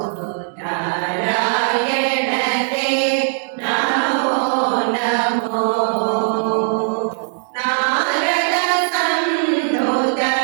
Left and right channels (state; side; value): silent; left; digital silence